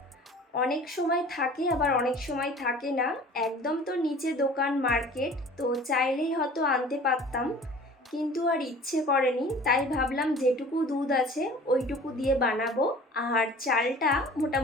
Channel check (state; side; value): normal; both; correlation 0.45